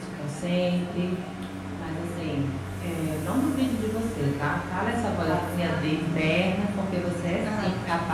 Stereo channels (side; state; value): both; identical; correlation 1.00